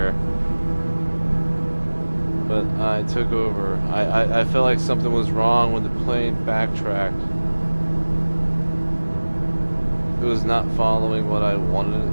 But I took over. I felt like something was wrong when the plane backtracked. It was not following what I wanted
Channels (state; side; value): inverted; both; correlation -1.00